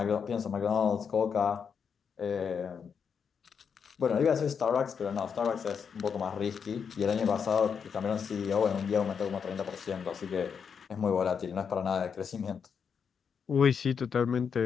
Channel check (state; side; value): quieter; right; 6.6 dB